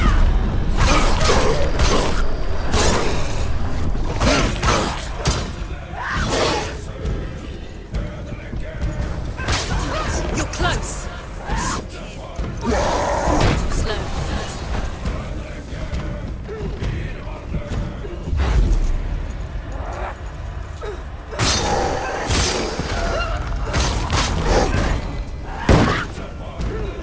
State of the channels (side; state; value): both; identical; correlation 1.00